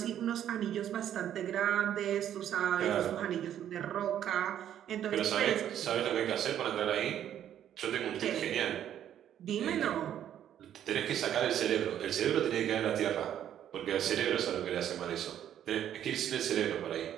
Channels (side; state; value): left; quieter; 10.5 dB